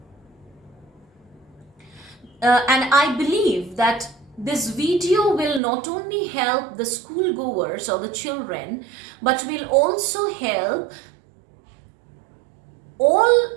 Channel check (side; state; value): left; drops out; at 5.6 s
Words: And I believe that this video will not only help the schoolgoers or the children, but will also help